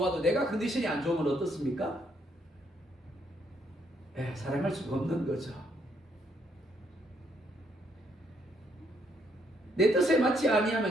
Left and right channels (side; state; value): both; normal; correlation 0.72